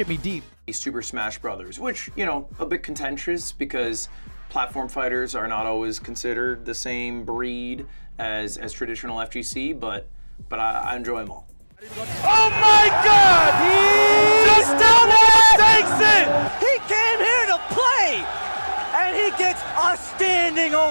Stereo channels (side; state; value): both; inverted; correlation -1.00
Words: deep. Super Smash Brothers, which, a bit contentious because platform fighters are not always considered the same breed as traditional FGC, but I enjoy them all. Oh my God! He just takes it! He came here to play! And he gets a standing